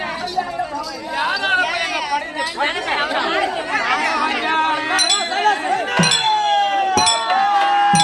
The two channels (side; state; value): both; identical; correlation 1.00